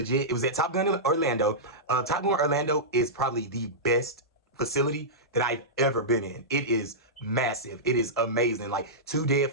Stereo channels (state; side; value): normal; both; correlation -0.13